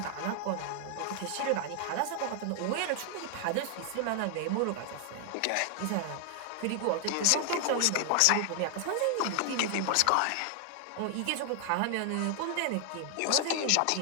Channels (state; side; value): different; both; correlation 0.00